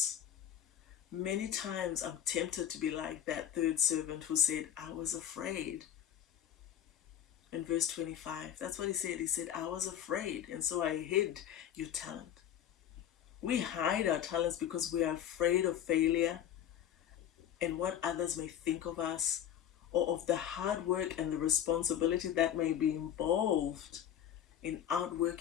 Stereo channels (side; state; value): right; quieter; 10.2 dB